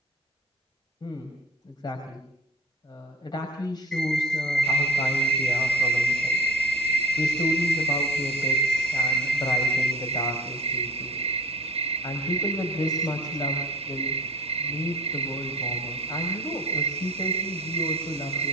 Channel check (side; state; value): both; normal; correlation 0.39